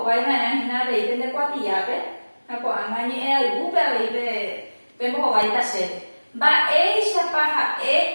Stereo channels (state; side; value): inverted; both; correlation -1.00